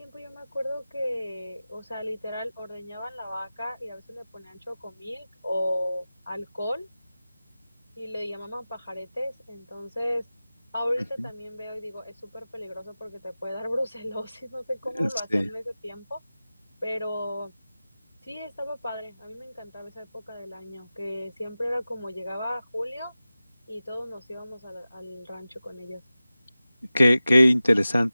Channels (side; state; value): both; inverted; correlation -0.96